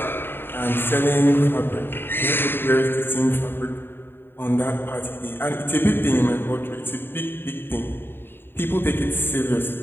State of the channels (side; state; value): right; late; 0.10 ms